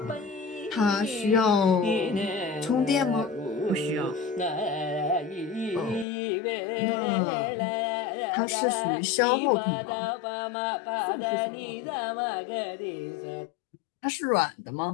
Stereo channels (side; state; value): right; drops out; at 6.1 s